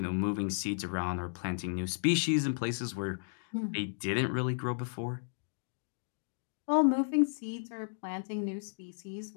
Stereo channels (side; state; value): right; silent; digital silence